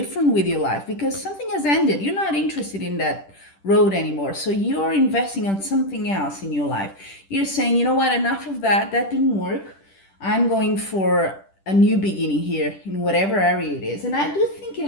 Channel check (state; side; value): late; right; 10 ms